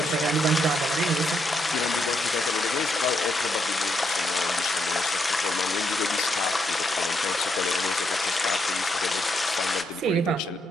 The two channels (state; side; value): normal; both; correlation 0.78